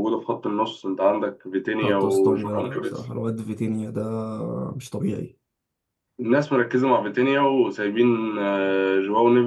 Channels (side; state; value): both; identical; correlation 1.00